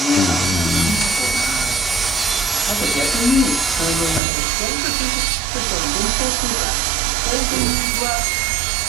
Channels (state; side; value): drops out; left; at 4.2 s